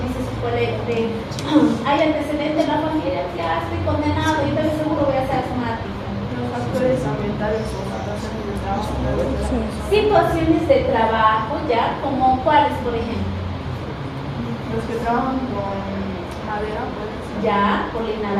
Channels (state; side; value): identical; both; correlation 1.00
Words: dice su colega, hay antecedentes en la familia, ya estoy condenado y entonces seguro voy a ser asmática. Los factores ambientales o situaciones de trabajo. Situaciones de trabajo, ya, como cuáles, por ejemplo. Los que trabajan con madera, pues. Ya, por la